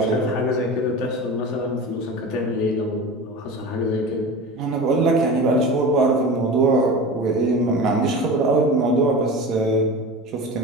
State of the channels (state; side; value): normal; both; correlation 0.31